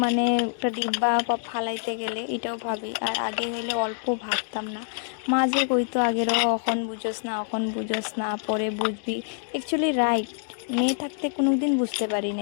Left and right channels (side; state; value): right; silent; digital silence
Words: মানে একটা ডিব্বা বা ফালাইতে গেলে এটাও ভাবি। আর আগে হইলে অল্প ভাবতাম না। মা যে কইতো আগেরও এখন বুঝোস না, এখন বুঝোস না, পরে বুঝবি, অ্যাকচুয়ালি রাইট। মেয়ে থাকতে কোনো দিন বুঝতে পারি